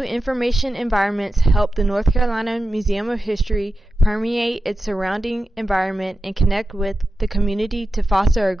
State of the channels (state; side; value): normal; both; correlation 0.92